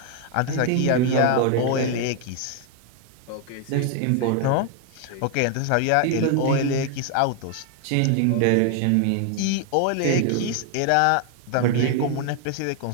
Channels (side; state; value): both; different; correlation 0.00